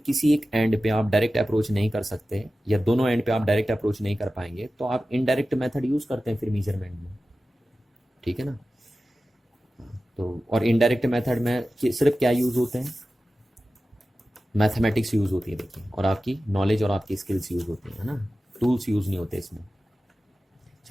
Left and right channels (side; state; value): both; normal; correlation 0.95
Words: एक एंड पे आप डायरेक्ट अप्रोच नहीं कर सकते, या दोनों एंड पे आप डायरेक्ट अप्रोच नहीं कर पाएंगे, तो आप इनडायरेक्ट मेथड यूज़ करते हैं फिर मेजरमेंट में, ठीक है ना। तो और इनडायरेक्ट मेथड में सिर्फ क्या यूज़ होते हैं, मैथमेटिक्स यूज़ होती है देखिए, और आपकी नॉलेज और आपकी स्किल्स यूज़ होती हैं, है ना, टूल्स यूज़ नहीं होते इसमें।